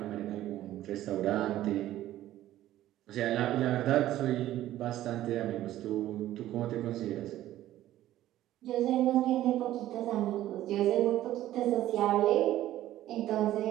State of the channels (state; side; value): quieter; left; 13.8 dB